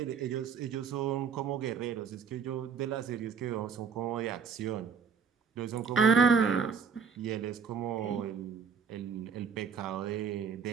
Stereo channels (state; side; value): quieter; left; 6.2 dB